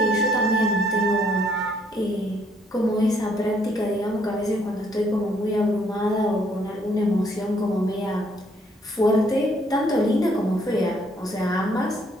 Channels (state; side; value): normal; both; correlation 0.67